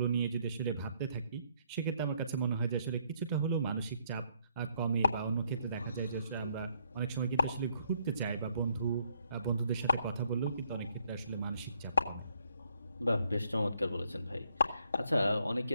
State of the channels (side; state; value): both; inverted; correlation -0.70